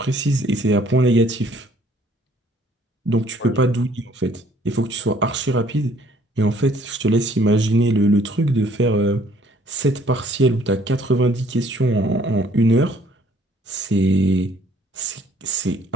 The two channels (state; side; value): normal; both; correlation 0.60